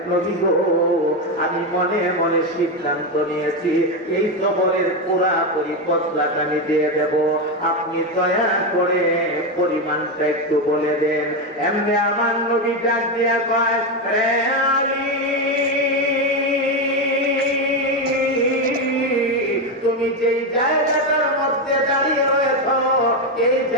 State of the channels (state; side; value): normal; both; correlation 0.10